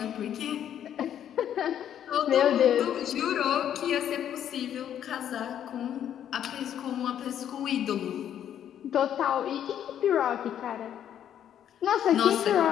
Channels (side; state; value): right; quieter; 10.0 dB